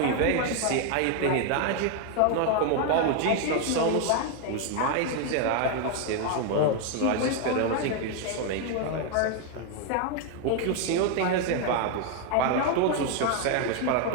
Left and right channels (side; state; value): both; different; correlation 0.01